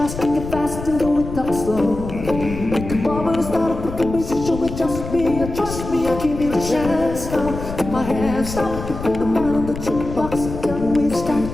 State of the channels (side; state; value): left; noise; rumble, 9 dB below the sound